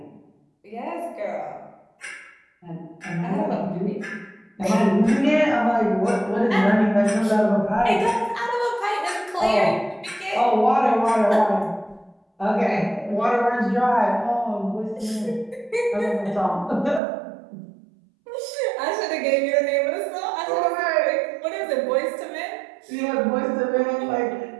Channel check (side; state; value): left; drops out; at 17.0 s